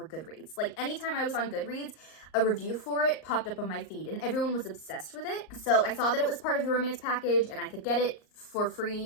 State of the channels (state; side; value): late; right; 38 ms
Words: Goodreads. Like, anytime I was on Goodreads, a review for it popped up on my feed, and everyone was obsessed with it. So I saw that it was part of the romance package, and I could get it for